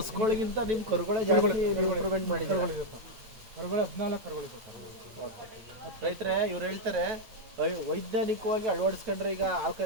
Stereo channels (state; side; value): late; left; 8.9 ms